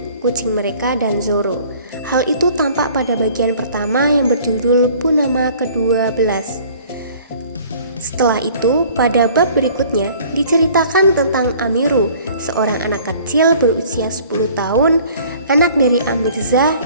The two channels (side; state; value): both; inverted; correlation -0.52